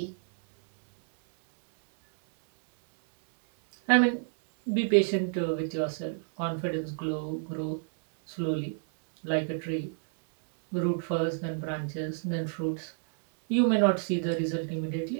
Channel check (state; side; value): silent; left; 59 dB below the other